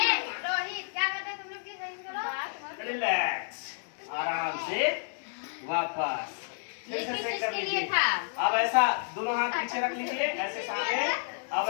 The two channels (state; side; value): silent; right; 57 dB below the other